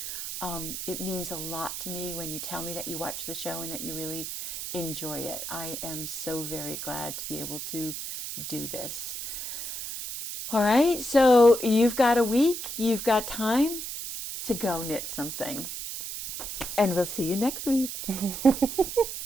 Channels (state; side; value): noise; right; hiss, 6 dB below the sound